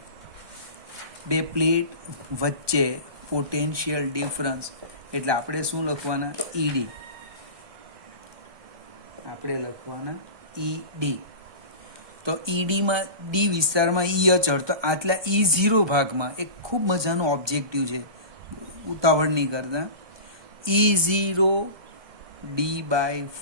બે પ્લેટ વચ્ચે પોટેન્શિયલ ડિફરન્સ એટલે આપણે શું લખવાના? ED. આપણે લખવાના ED. તો EDમાં D વિસ્તારમાં E અચળ, તો આટલા E0 ભાગમાં એક ખૂબ મજાનો ઓબ્જેક્ટિવ છે, ઉતાવળ નહીં કરતા. E0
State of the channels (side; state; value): left; late; 1.2 ms